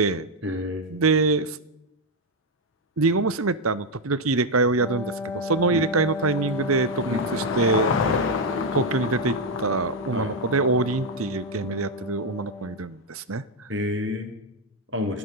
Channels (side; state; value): both; normal; correlation 0.03